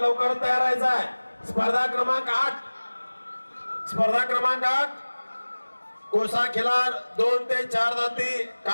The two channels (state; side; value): inverted; both; correlation -1.00